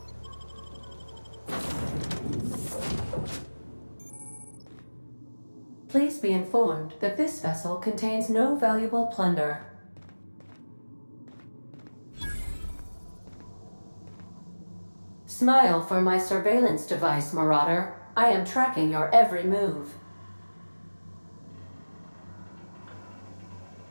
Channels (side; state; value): both; inverted; correlation -1.00